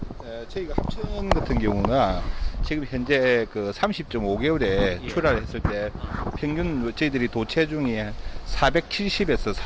저희가 합천 같은 경우는 지금 현재 그 30.5개월에 출하를 했을 때 평균 저희들이 도체중이 470에서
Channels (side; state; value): both; identical; correlation 1.00